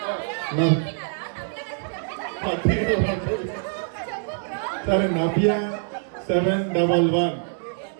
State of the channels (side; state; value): left; silent; 62 dB below the other